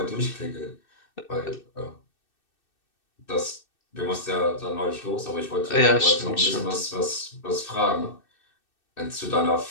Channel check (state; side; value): late; right; 2.6 ms